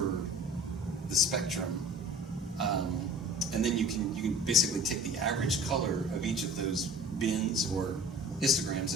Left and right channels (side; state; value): both; normal; correlation 0.43